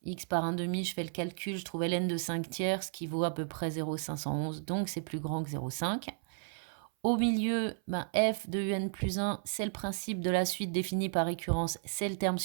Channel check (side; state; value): left; silent; 55 dB below the other